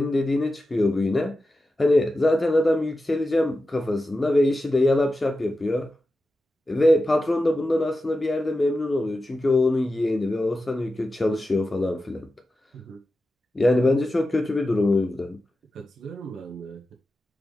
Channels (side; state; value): both; normal; correlation 0.92